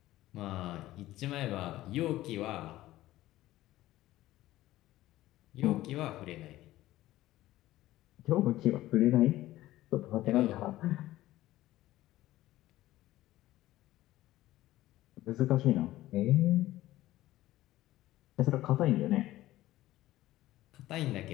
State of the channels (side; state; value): right; quieter; 15.7 dB